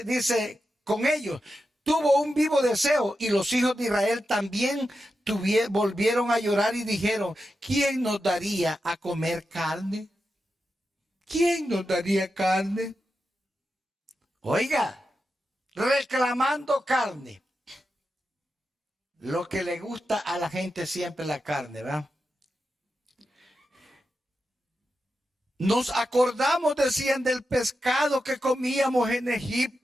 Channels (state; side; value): normal; both; correlation 0.89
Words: ellos, tuvo un vivo deseo, y los hijos de Israel también volvieron a llorar y dijeron, ¿quién nos daría a comer carne? ¿Quién nos daría carne? Oiga, reclamando carne. Lo que le gusta a la gente siempre la carne, ¿verdad? Nos acordamos, decían, del pescado que comíamos en